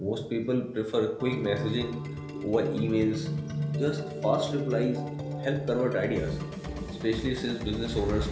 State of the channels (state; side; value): identical; both; correlation 1.00